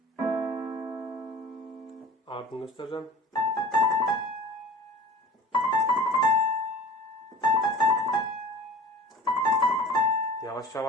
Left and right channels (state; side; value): normal; both; correlation 0.41